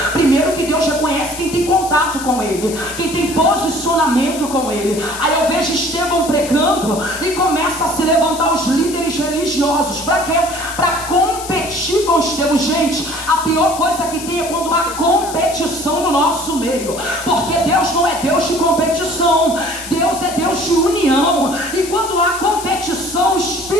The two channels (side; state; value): left; noise; hiss, 11 dB below the sound